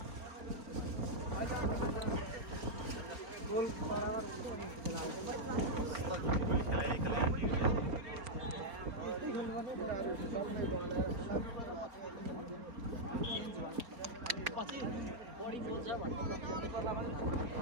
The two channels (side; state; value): left; late; 4.3 ms